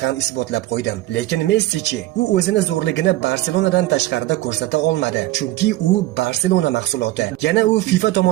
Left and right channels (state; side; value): quieter; left; 16.4 dB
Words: ham isbotlab qo'ydim. Lekin Messi-chi, u o'zini zo'rligini Barselonadan tashqarida ko'rsata olmadi, chunki u Barselona mahsuloti. Yana u FIFA